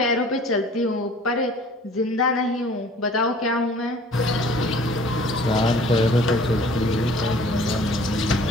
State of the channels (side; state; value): both; normal; correlation 0.51